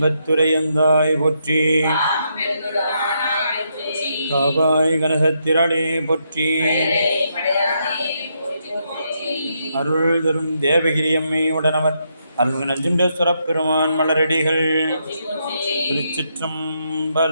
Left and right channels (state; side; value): inverted; both; correlation -0.79